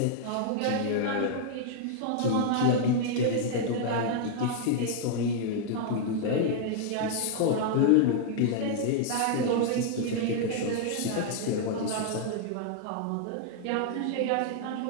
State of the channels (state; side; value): different; both; correlation -0.01